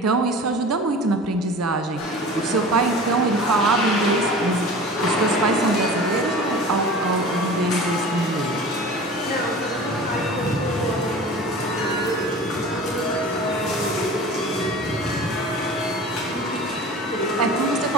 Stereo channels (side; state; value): both; normal; correlation 0.38